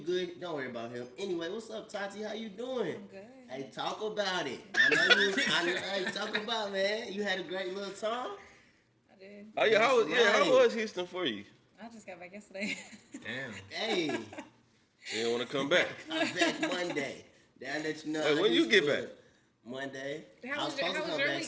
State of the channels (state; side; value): identical; both; correlation 1.00